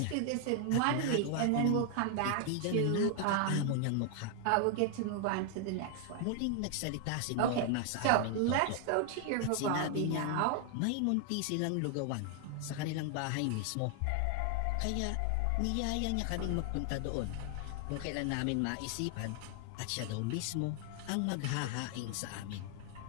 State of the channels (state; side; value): different; both; correlation 0.00